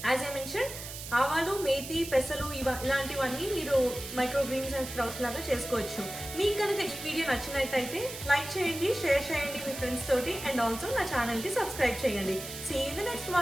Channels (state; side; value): noise; right; hiss, 10 dB below the sound